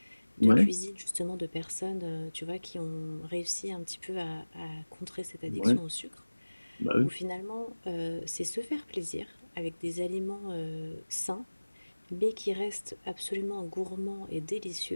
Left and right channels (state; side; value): inverted; both; correlation -1.00